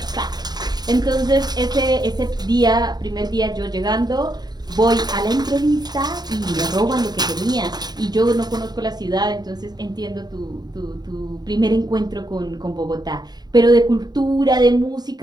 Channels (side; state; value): left; late; 0.20 ms